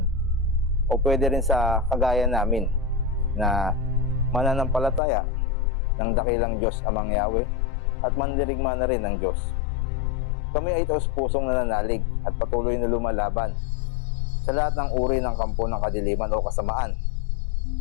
o pwede rin sa kagaya namin na mananampalataya ng dakilang Diyos Amang Yahweh at mandirigma na rin ng Diyos. Kami ay taos-pusong nananalig at patuloy na lumalaban sa lahat ng uri ng kampo ng kadiliman o kasamaan.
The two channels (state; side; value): drops out; right; at 5.0 s